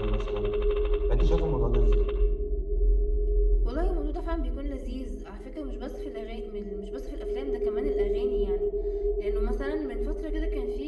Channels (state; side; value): identical; both; correlation 1.00